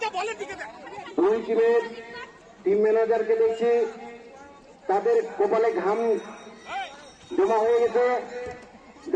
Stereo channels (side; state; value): both; identical; correlation 1.00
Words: দুই টিমের টিম ম্যানেজারকে দেখছি তাদের কপালে ঘাম জমা হয়ে গেছে।